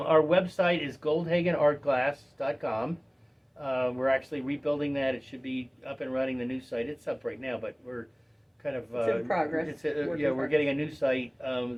website is goldhagenartglass.com. We're actually rebuilding that. It should be up and running, the new site. It's up right now, but we're kind of... it's in progress. We're getting a new site,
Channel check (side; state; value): both; identical; correlation 1.00